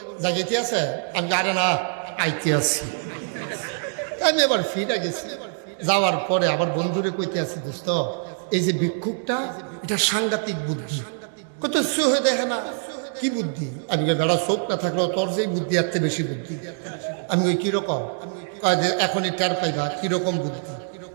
জাগিতে আছে? আমি আরে না, আইতে আছি। আমি এবার ফিরে গেছি। যাওয়ার পরে আবার বন্ধুরে কইতে আছি, দোস্ত এই যে ভিক্ষুকটা, এটা সাংঘাতিক বুদ্ধি। কত হয়ে দেখে না, কি বুদ্ধি? আমি বেড়া চোখ না থাকলেও তোর যেই বুদ্ধি এর চেয়ে বেশি বুদ্ধি। আমি ওই কিরকম? এখনই টের পাইবা কিরকম বুদ্ধি।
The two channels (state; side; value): silent; left; digital silence